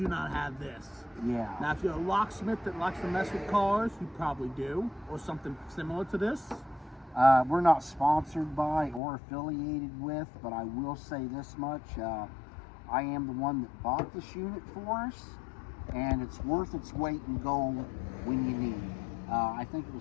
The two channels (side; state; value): right; drops out; at 9.0 s